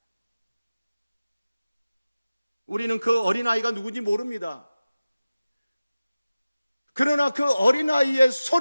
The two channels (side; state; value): both; inverted; correlation -0.96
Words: 우리는 그 어린아이가 누군지 모릅니다. 그러나 그 어린아이의